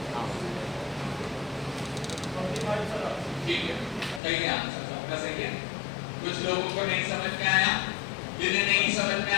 ठीक है, सही है, आंसर सबका सही है। कुछ लोगों को नहीं समझ में आया, जिन्हें नहीं समझ में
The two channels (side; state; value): right; drops out; at 4.2 s